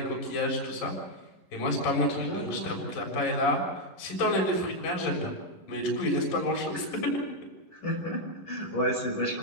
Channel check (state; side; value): late; right; 11 ms